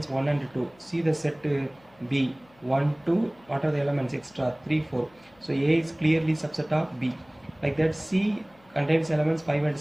1 and 2. See the set B, 1, 2, what are the elements extra? 3, 4. So A is clearly subset of B. Like that, C contains elements 5 and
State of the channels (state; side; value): noise; left; hum, 30 dB below the sound